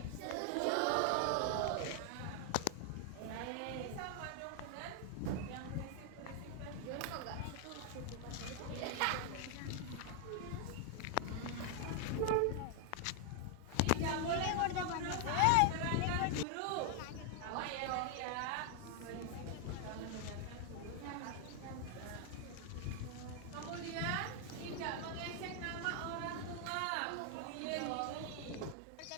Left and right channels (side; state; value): both; different; correlation 0.00